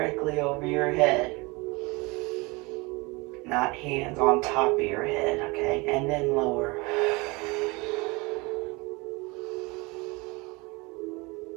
over your head. Not hands on top of your head, okay? And then lower.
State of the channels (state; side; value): quieter; left; 25.7 dB